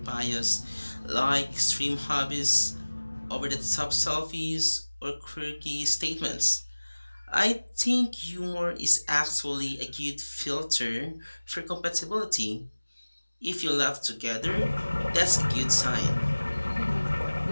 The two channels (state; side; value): inverted; both; correlation -1.00